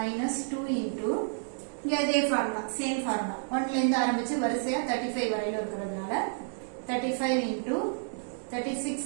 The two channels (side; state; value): left; silent; digital silence